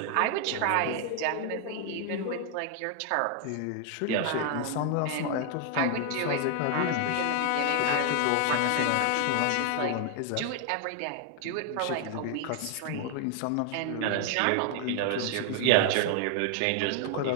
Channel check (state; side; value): different; both; correlation 0.00